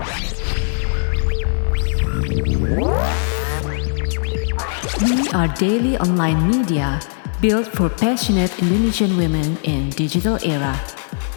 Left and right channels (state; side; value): silent; right; digital silence